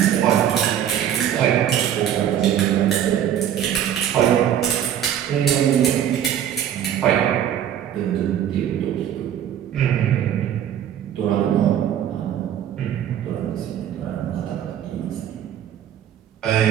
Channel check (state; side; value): quieter; left; 10.1 dB